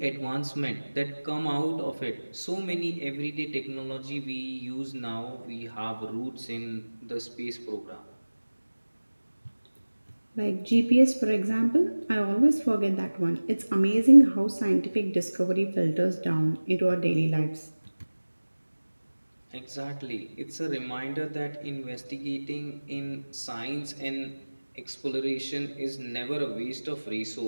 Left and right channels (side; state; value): both; inverted; correlation -1.00